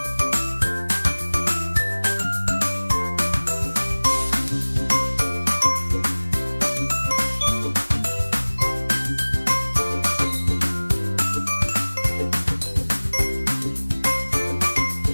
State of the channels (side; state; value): both; inverted; correlation -1.00